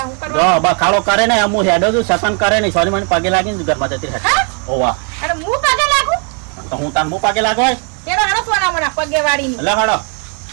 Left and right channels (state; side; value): quieter; left; 38.5 dB